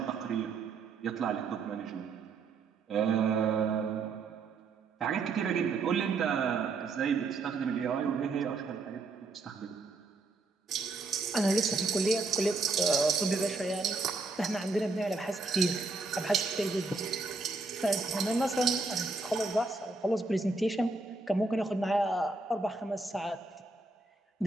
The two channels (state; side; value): quieter; left; 3.8 dB